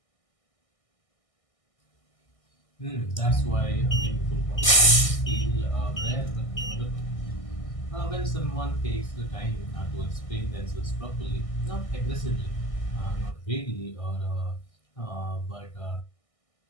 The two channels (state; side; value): late; right; 1.6 ms